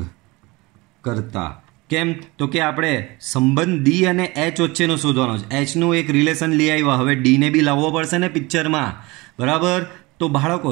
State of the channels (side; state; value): left; quieter; 23.5 dB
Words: કરતા. કેમ? તો કે આપણે સંબંધ D અને H વચ્ચેનો શોધવાનો છે. H નું એક રિલેશન લઈ આવ્યા, હવે D ને બી લાવવો પડશે ને પિક્ચરમાં. બરાબર. તો બાળકો